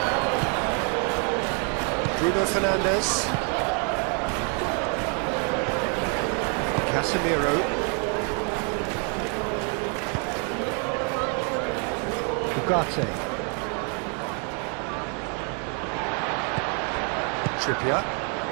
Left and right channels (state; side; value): quieter; left; 39.1 dB